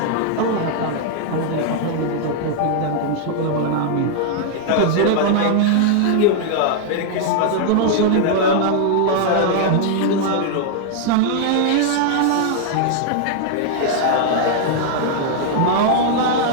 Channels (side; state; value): both; different; correlation -0.01